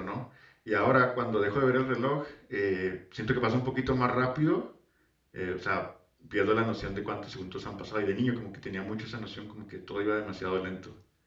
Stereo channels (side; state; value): both; identical; correlation 1.00